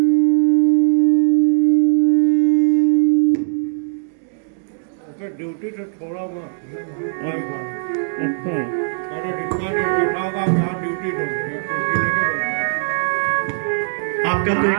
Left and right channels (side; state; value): left; silent; digital silence